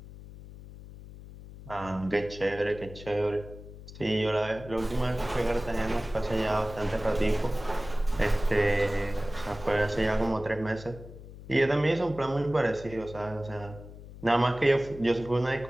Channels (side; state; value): left; noise; hum, 15 dB below the sound